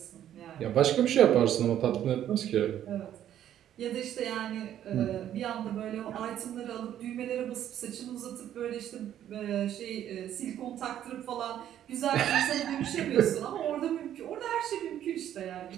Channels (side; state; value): left; quieter; 11.0 dB